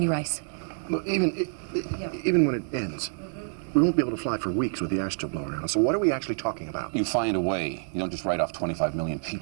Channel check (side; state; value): left; silent; 60 dB below the other